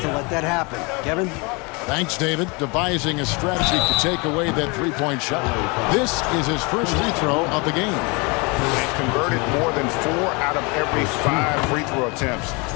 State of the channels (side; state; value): right; quieter; 29.1 dB